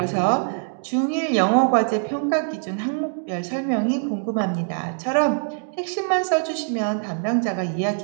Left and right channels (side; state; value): left; silent; digital silence